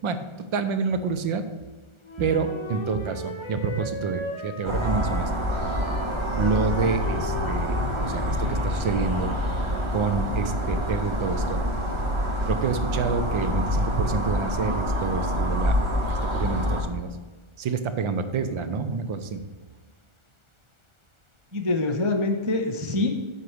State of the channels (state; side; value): late; left; 1.4 ms